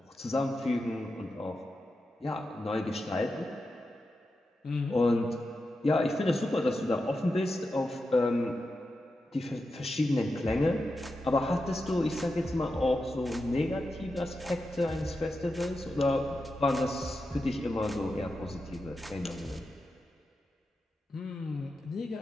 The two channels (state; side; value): normal; both; correlation 0.89